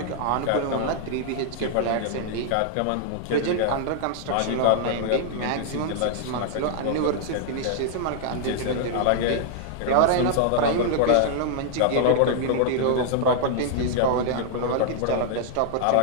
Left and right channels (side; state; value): both; different; correlation -0.01